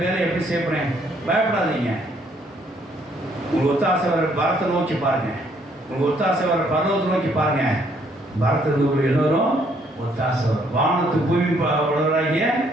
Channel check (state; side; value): normal; both; correlation 0.67